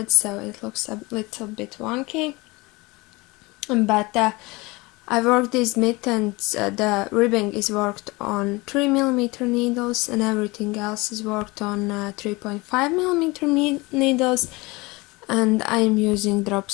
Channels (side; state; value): right; quieter; 23.7 dB